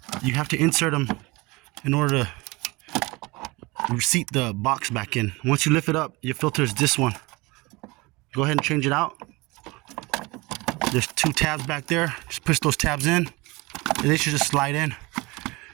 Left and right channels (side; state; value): left; quieter; 23.8 dB